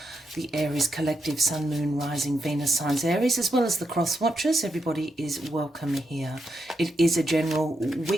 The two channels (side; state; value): both; normal; correlation 0.83